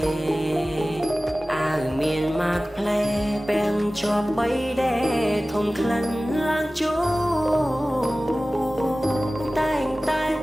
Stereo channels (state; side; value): normal; both; correlation 0.97